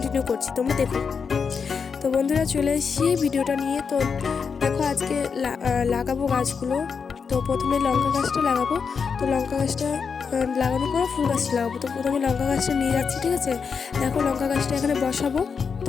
করছি, তোমরা দেখো। তো বন্ধুরা চলে এসেছি ভিডিওটা নিয়ে। তো দেখো আজকে লাগাবো গাছগুলো। তো প্রথমে লঙ্কা গাছটা লাগাবো। তো লঙ্কা গাছটা লাগানোর পরে ফুল গাছটা লাগাবো। তো প্রথমে লঙ্কা গাছটা নিয়ে যাচ্ছি, ঠিক আছে। দেখো লঙ্কা গাছটা এখানে বসাবো।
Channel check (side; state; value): right; quieter; 5.9 dB